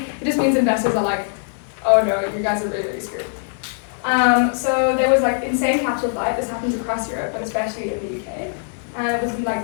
it just means investors are like, oh no, you guys are really, really screwed. So there was like insane capital flight. This happens across Europe, but especially in the UK. And it was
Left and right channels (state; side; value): silent; right; digital silence